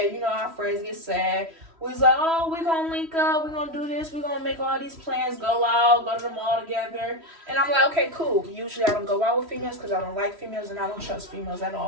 Our friends get sad. We was like, oh, we're going to link up. We're going to do this. We're going to make all these plans, go out, go to the mall together. And I'm like, okay, cool. Usually I don't go out with females because I don't like females and I don't trust females at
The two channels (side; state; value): left; late; 3.1 ms